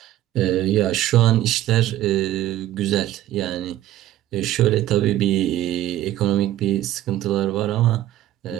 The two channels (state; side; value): quieter; left; 13.7 dB